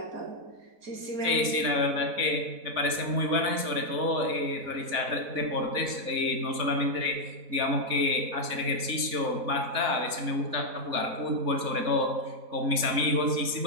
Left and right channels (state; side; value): late; left; 4.1 ms